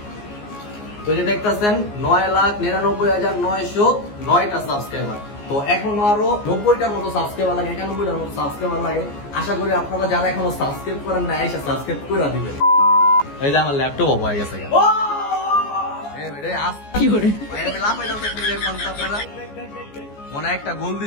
তো যে দেখতেছেন 9,99,909টা সাবস্ক্রাইবার। তো এখনো আরো 90টার মতো সাবস্ক্রাইবার লাগে, 91টার মতো সাবস্ক্রাইবার লাগে। আশা করি আপনারা যারা এখনো সাবস্ক্রাইব করেন না, এসে সাবস্ক্রাইব করে দিবেন। এই যে আমার ল্যাপটপ অফ হয়ে গেছে, মনে একটা গোল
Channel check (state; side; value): late; right; 14 ms